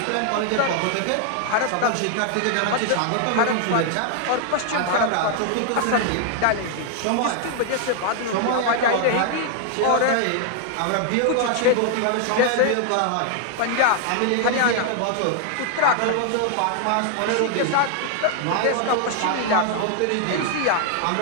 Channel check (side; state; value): both; different; correlation 0.00